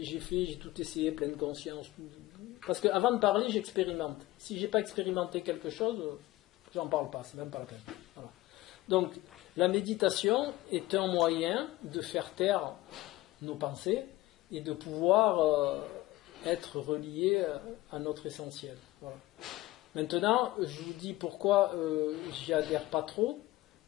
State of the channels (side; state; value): right; quieter; 17.8 dB